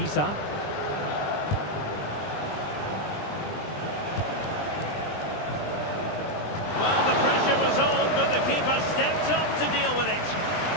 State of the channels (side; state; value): right; late; 20 ms